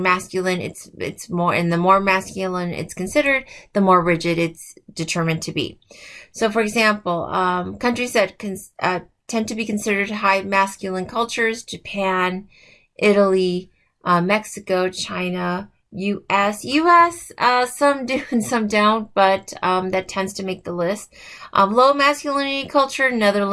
it's more, and the more masculine it's considered, the more rigid it's determined to be. So for example, countries that tend to be considered high masculine cultures: Japan, Italy, Mexico, China, US, some do and some don't, but that tends to make the list. Low masculinity culture:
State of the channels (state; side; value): identical; both; correlation 1.00